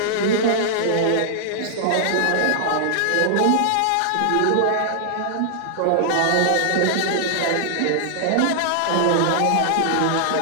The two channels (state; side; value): different; both; correlation -0.01